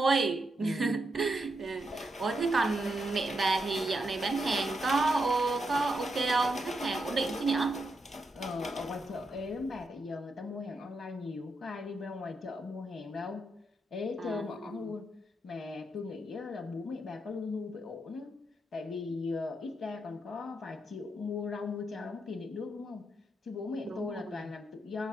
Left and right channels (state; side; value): normal; both; correlation 0.82